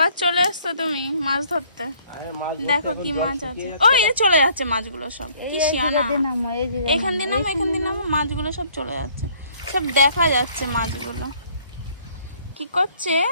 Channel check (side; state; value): both; inverted; correlation -0.60